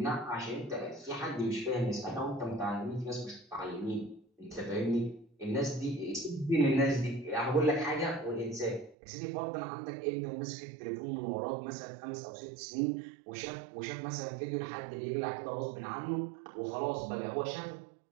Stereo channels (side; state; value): left; drops out; at 9.0 s